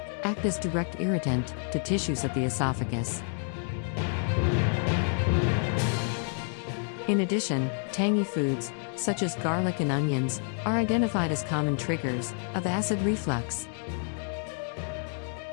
act as direct irritant to tissues of the esophagus. In addition, tangy foods, such as garlic and onions, are identified as common triggers of acid reflux.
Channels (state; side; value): silent; right; 59 dB below the other